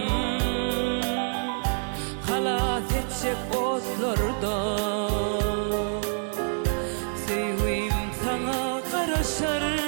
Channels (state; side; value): silent; left; digital silence